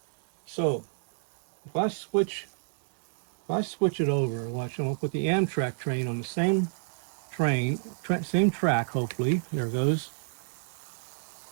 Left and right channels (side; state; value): left; silent; digital silence